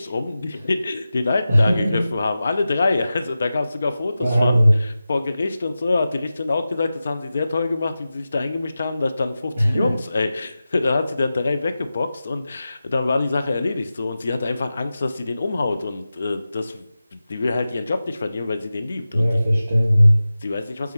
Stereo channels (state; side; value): inverted; both; correlation -0.94